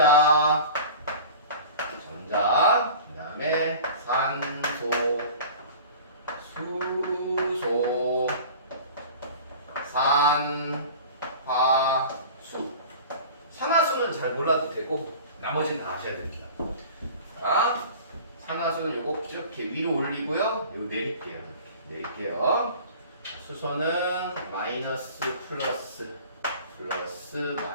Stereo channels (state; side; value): inverted; both; correlation -0.40